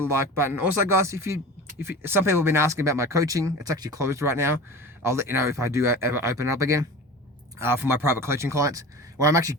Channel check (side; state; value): both; normal; correlation 0.35